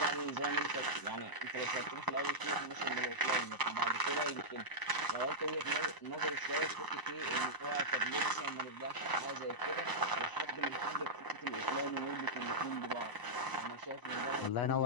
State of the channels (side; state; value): right; late; 1.0 ms